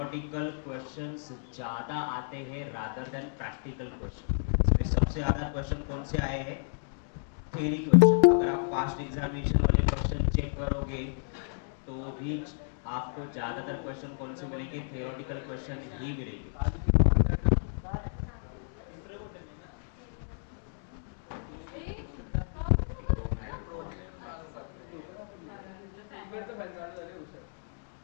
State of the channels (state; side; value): silent; right; digital silence